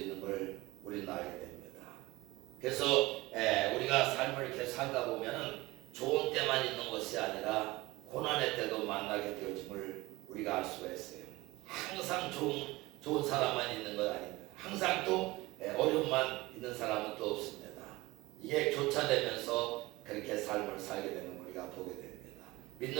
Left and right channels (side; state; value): left; quieter; 20.6 dB